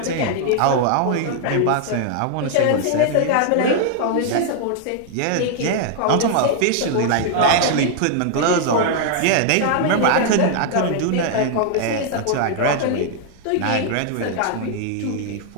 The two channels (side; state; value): both; different; correlation 0.00